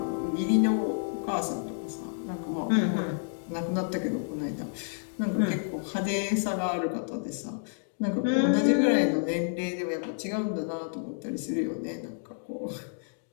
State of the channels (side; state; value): right; silent; digital silence